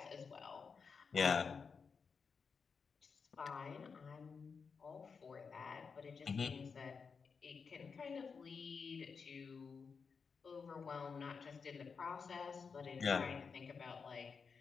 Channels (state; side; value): quieter; right; 5.5 dB